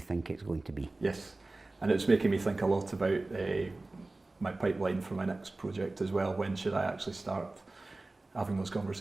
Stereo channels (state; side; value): quieter; left; 3.1 dB